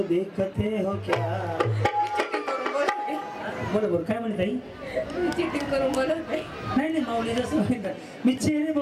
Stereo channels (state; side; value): identical; both; correlation 1.00